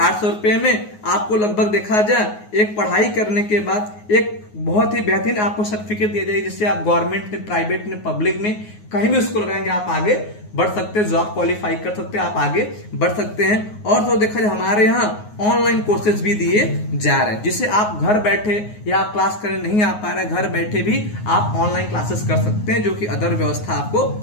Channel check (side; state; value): right; late; 9.5 ms